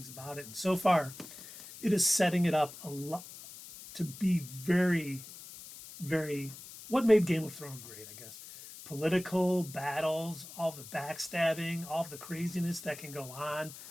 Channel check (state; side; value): noise; left; hiss, 15 dB below the sound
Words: about it. And so far, it is setting it up a lot to be very, very, what made Game of Thrones great, I guess. Political battles, all the backstabbing, all the craziness that can go on.